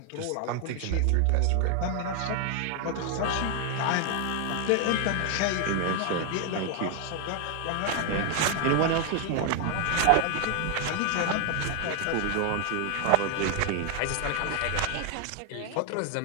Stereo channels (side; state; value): both; different; correlation 0.00